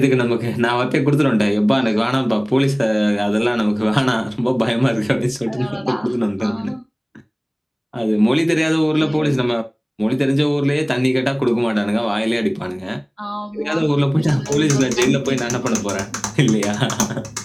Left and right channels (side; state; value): both; identical; correlation 1.00